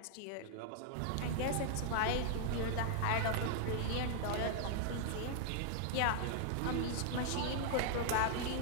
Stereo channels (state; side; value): different; both; correlation -0.01